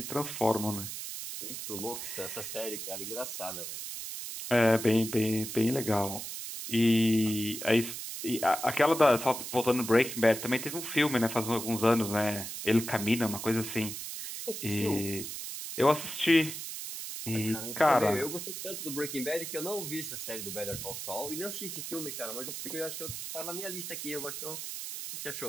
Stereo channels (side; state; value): right; noise; hiss, 7 dB below the sound